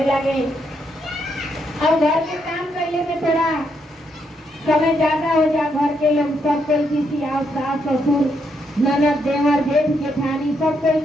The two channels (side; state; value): both; normal; correlation 0.77